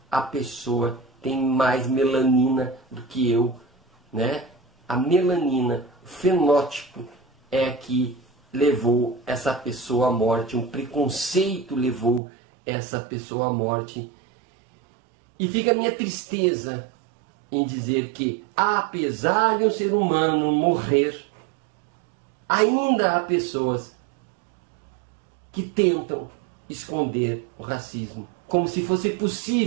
a pessoa tem mais melanina do que eu, né? A melanina, o fenótipo é que levou essa pessoa à morte, um preconceito levou essa pessoa à morte. E fica a minha tristeza em dizer que, apesar de um ser humano morrer, ainda há pessoas que tentam esconder o racismo, como se fosse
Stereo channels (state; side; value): drops out; left; at 12.2 s